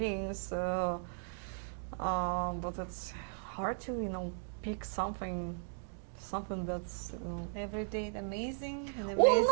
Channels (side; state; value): left; silent; digital silence